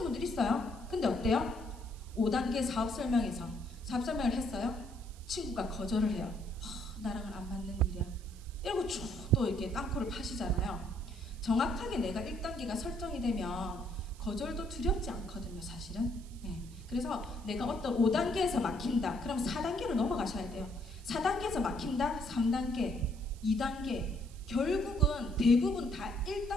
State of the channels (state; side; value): noise; right; hiss, 23 dB below the sound